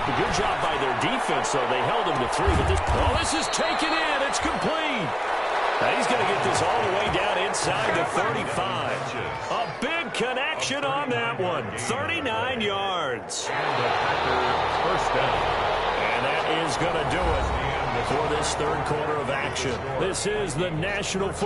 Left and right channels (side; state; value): both; identical; correlation 1.00